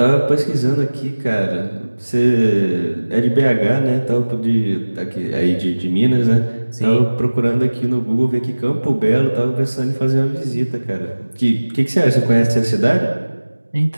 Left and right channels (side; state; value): both; inverted; correlation -1.00